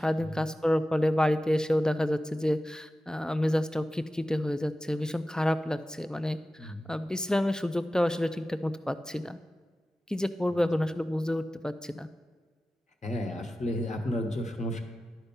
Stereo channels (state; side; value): normal; both; correlation 0.94